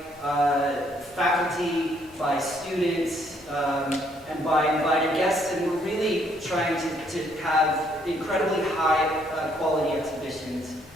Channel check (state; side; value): normal; both; correlation 0.68